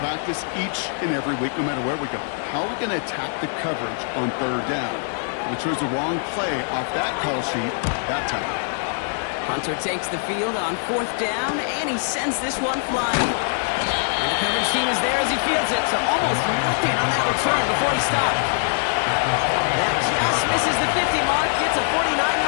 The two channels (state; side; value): silent; right; 63 dB below the other